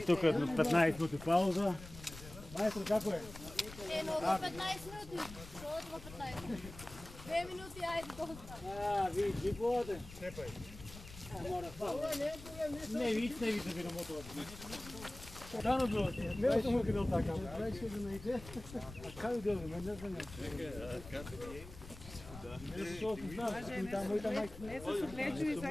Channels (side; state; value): left; noise; rumble, 15 dB below the sound